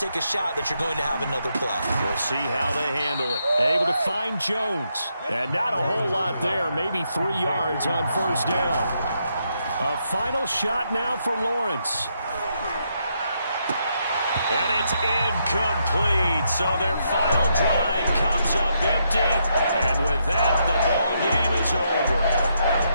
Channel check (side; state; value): both; inverted; correlation -0.78